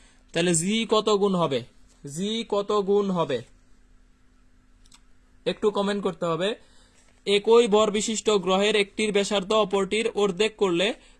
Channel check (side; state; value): both; identical; correlation 1.00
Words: তাহলে জি কত গুণ হবে, জি কত গুণ হবে একটু কমেন্ট করতে হবে। একই ভর বিশিষ্ট গ্রহের একটির ব্যাসার্ধ অপরটির অর্ধেক করলে